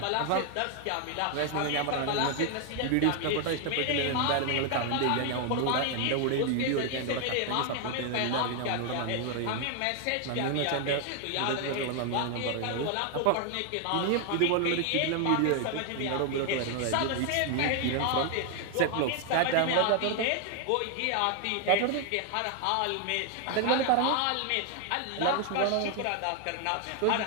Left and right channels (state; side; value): different; both; correlation 0.00